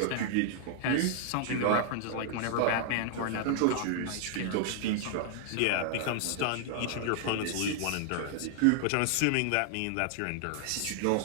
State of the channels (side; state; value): both; different; correlation 0.00